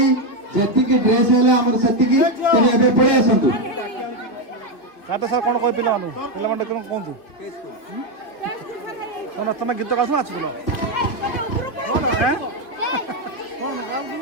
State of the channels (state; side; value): late; right; 2.5 ms